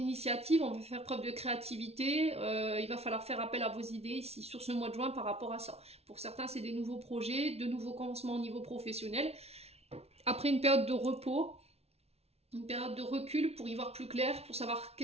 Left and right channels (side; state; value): left; late; 0.30 ms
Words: on va faire preuve de créativité, il va falloir faire appel à vos idées ici sur ce mois de juin par rapport à ça. Pour certains, c'est des nouveaux projets, de nouveaux commencements au niveau professionnel. Après une période de repos, une période de recul pour y voir plus clair, pour savoir